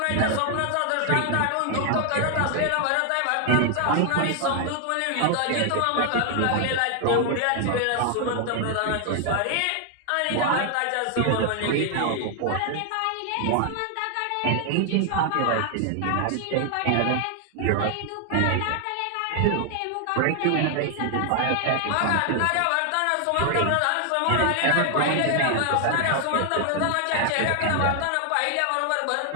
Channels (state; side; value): different; both; correlation 0.00